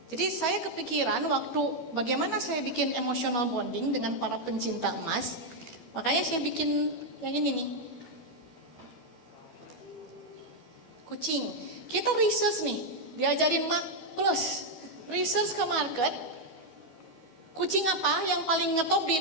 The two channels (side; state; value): right; late; 13 ms